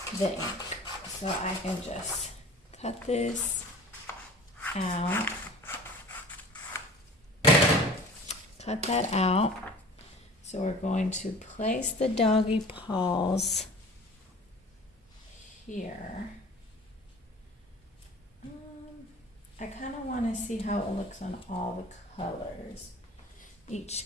the ink. So I can just cut this out. Cut that out. So we're going to place the doggy paws here. I kind of want to see how it looks on all the colors. Each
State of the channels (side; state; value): both; normal; correlation 0.43